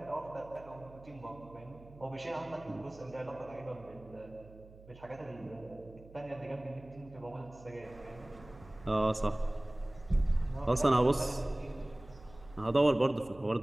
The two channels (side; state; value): right; noise; hum, 20 dB below the sound